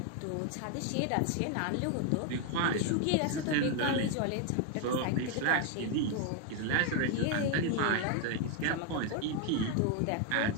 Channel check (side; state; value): both; different; correlation 0.01